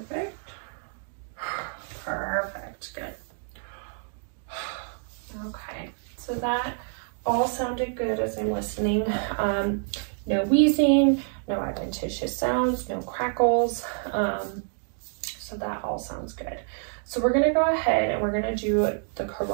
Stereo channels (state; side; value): silent; left; 60 dB below the other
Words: So that all sounded good as I'm listening. No wheezing, no adventitious sounds, no crackles. So that all sounds good. So we're gonna go ahead and we're gonna do the